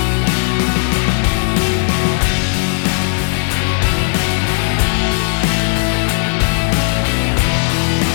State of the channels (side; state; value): right; silent; digital silence